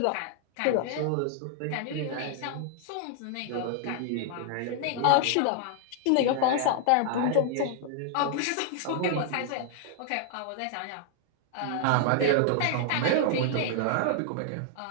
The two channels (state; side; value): different; both; correlation 0.00